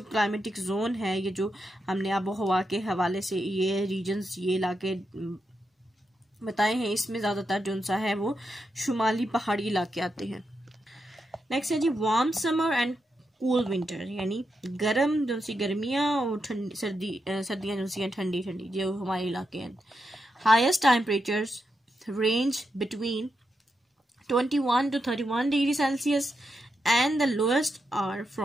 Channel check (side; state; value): both; normal; correlation 0.85